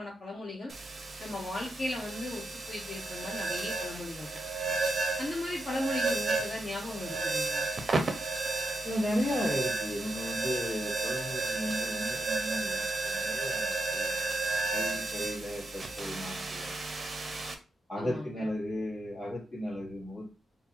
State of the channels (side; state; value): both; normal; correlation 0.85